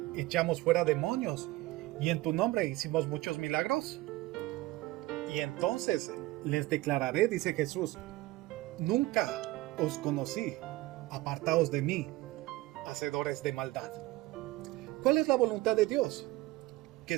echamos fuera demonios, y en tu nombre hicimos muchos milagros. Y entonces les declararé, dice Jesús, nunca os conocí, apartaos de mí, hacedores de maldad. ¿Cuál es la voluntad de Dios? Que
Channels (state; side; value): quieter; left; 18.8 dB